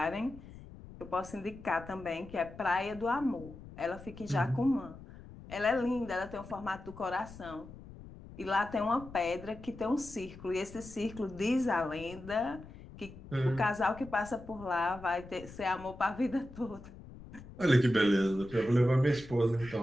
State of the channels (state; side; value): noise; left; rumble, 16 dB below the sound